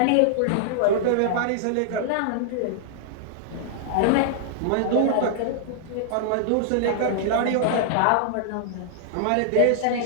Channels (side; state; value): both; different; correlation -0.01